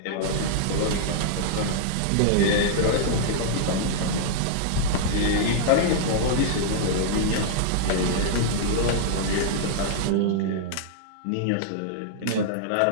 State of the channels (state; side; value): different; both; correlation -0.01